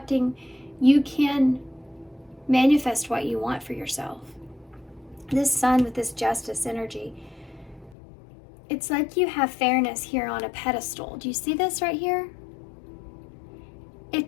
you can manifest what you want for yourself. This Sun with this Justice energy, it's like you have fairness here on a pedestal. Do you see this right here?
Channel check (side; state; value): right; drops out; at 8.0 s